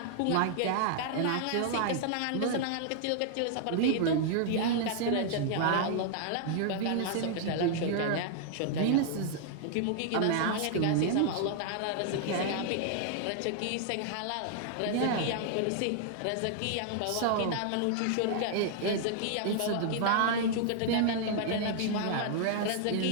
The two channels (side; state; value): both; different; correlation -0.01